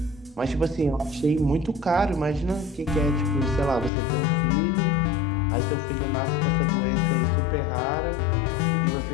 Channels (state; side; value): drops out; right; at 3.9 s